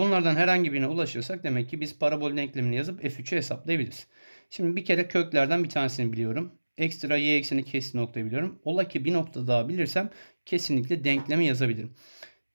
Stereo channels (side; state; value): both; inverted; correlation -1.00